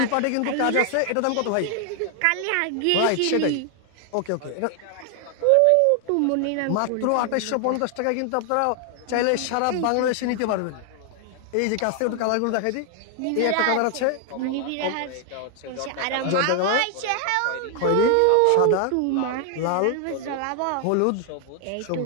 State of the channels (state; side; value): different; both; correlation 0.00